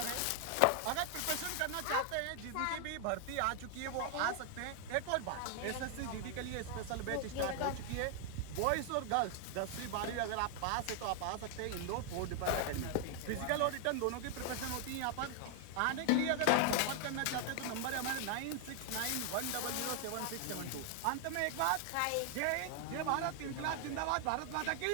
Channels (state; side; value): different; both; correlation 0.00